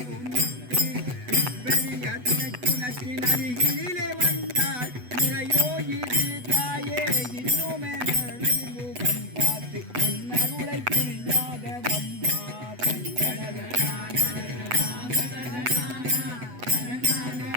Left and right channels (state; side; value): late; left; 8.1 ms